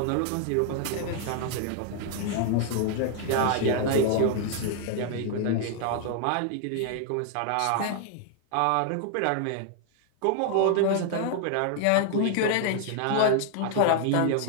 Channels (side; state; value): both; different; correlation 0.00